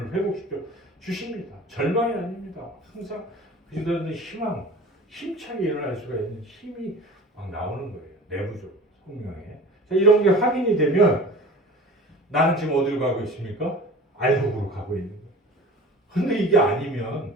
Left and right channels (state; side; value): normal; both; correlation 0.40